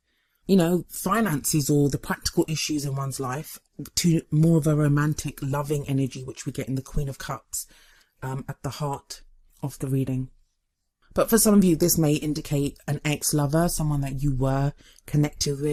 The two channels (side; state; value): both; identical; correlation 1.00